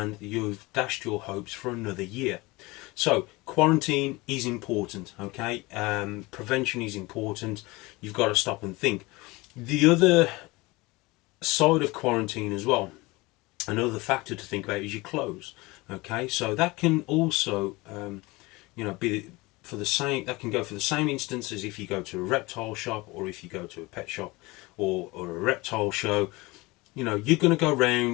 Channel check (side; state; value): right; quieter; 22.8 dB